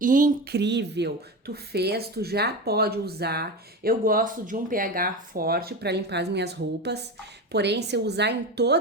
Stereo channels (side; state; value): both; normal; correlation 0.23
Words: Tu fez, tu já pode usar. Eu gosto de um pH forte para limpar as minhas roupas. Porém, se eu usar em